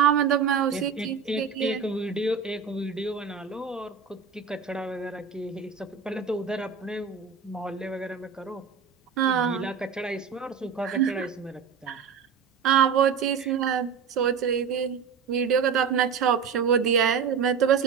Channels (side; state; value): left; quieter; 6.4 dB